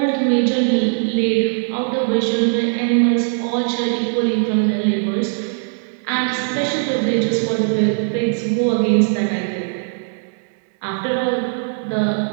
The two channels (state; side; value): silent; left; 65 dB below the other